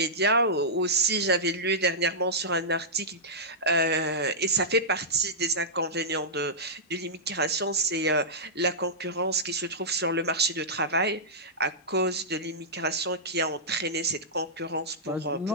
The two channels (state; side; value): normal; both; correlation -0.13